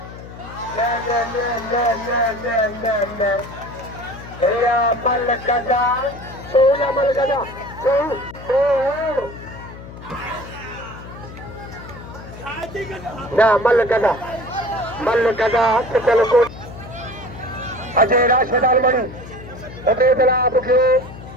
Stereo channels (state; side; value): noise; left; hum, 15 dB below the sound